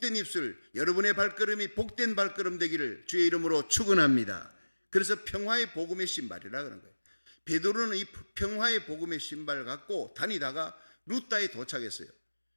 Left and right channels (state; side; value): inverted; both; correlation -1.00